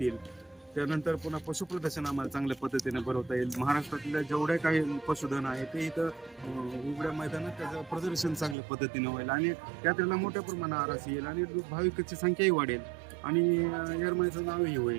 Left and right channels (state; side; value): drops out; left; at 8.6 s